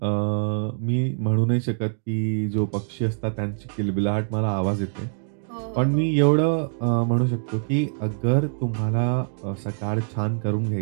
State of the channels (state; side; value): silent; left; digital silence